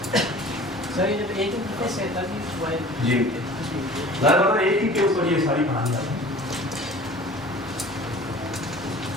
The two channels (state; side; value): normal; both; correlation 0.44